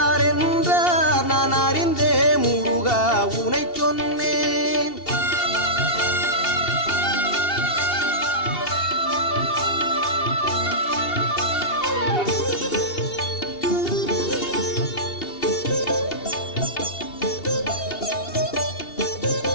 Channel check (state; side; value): late; right; 2.7 ms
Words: என்றார் நான் அறிந்தே முருகா உனை சொன்னேன்.